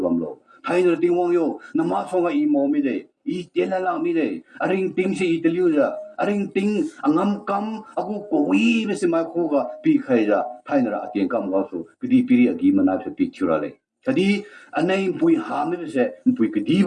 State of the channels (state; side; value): identical; both; correlation 1.00